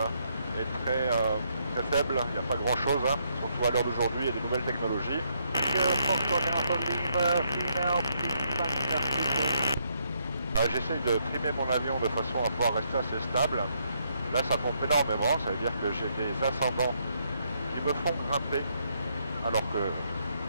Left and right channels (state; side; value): inverted; both; correlation -0.74